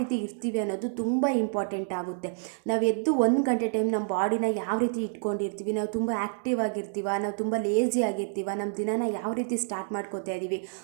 ಇರ್ತೀವಿ ಅನ್ನೋದು ತುಂಬ ಇಂಪಾರ್ಟೆಂಟ್ ಆಗುತ್ತೆ. ನಾವು ಎದ್ದು 1 ಗಂಟೆ ಟೈಮ್ ನಮ್ಮ ಬಾಡಿನ ಯಾವ ರೀತಿ ಇಟ್ಕೊಂಡಿರ್ತೀವಿ, ನಾವು ತುಂಬ ಆ್ಯಕ್ಟಿವ್ ಆಗಿರ್ತೀವ, ನಾವು ತುಂಬ ಲೇಜಿ ಆಗಿರ್ತೀವ, ನಮ್ಮ ದಿನಾನ ಯಾವ ರೀತಿ ಸ್ಟಾರ್ಟ್ ಮಾಡ್ಕೋತಾ ಇದ್ದೀವಿ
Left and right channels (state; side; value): silent; left; digital silence